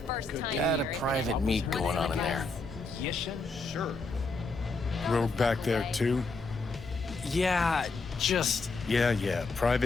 Got a private meet going on in there. Yes, sure. Rogue back there too? Yeah, just... Yeah,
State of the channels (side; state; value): right; quieter; 3.5 dB